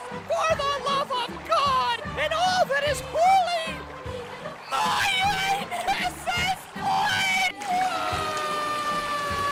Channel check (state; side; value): identical; both; correlation 1.00